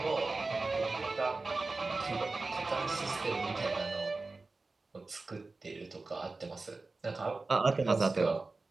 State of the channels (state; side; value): quieter; left; 3.6 dB